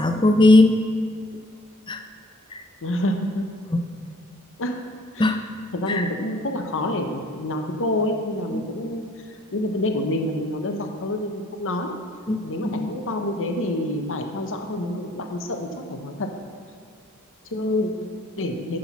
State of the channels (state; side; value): normal; both; correlation 0.60